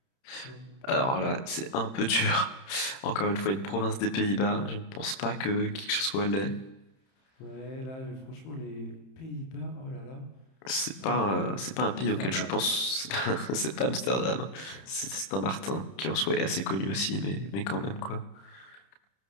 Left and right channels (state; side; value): late; right; 31 ms